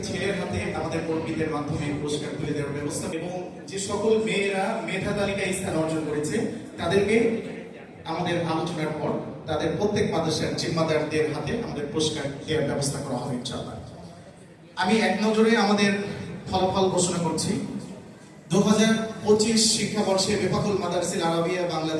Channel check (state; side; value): identical; both; correlation 1.00